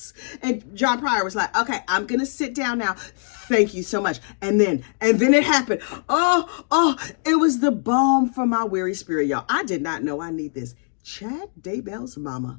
And John Pryor was like, okay, I'm going to sit down now. Thank you so much. And then it happened. Oh, it was the balm for my weary spirit, y'all. I did not know I need this. Chad Daybell's mama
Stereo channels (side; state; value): right; silent; digital silence